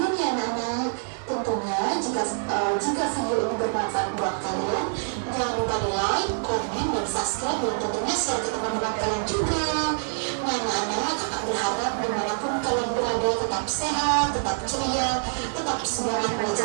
ya anak-anak. Tentunya jika video ini bermanfaat buat kalian, jangan lupa di like, komen, dan subscribe, dan tentunya share ke teman-teman kalian juga. Nah anak-anak, kakak berharap dimanapun kalian berada tetap sehat, tetap ceria, tetap semangat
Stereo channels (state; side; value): silent; left; digital silence